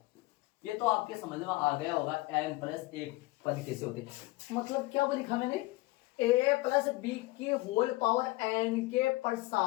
ये तो आपके समझ में आ गया होगा n प्लस 1 पद कैसे होते हैं। मतलब क्या लिखा मैंने, a प्लस बी की होल पावर n के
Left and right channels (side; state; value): right; quieter; 20.6 dB